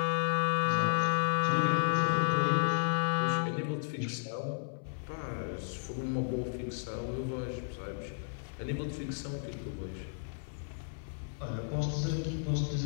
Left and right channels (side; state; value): right; silent; 56 dB below the other